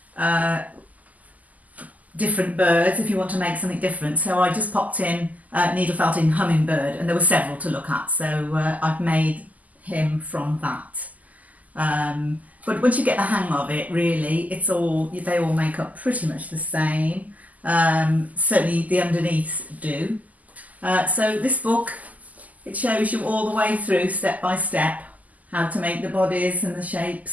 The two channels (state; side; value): late; left; 0.077 ms